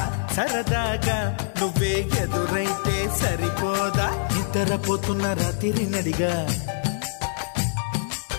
సరదాగా నువ్వే ఎదురైతే సరిపోదా నిద్రపోతున్న రాత్రి నడిగా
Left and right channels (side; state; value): right; silent; digital silence